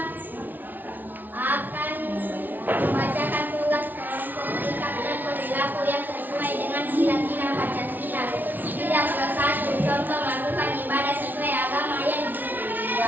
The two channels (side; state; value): left; late; 0.086 ms